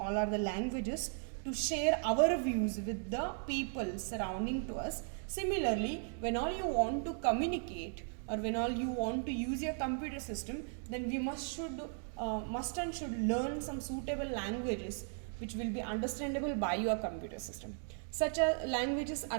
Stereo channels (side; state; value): left; silent; 53 dB below the other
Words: are the languages to share our views with the people surrounding to us. Similarly, when all you want to communicate or when all you want to use your computer system, then we must and should learn some suitable languages which will be understandable by your computer system. Such languages